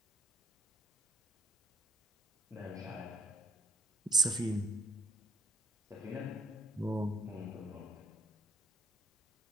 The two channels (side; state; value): both; normal; correlation 0.61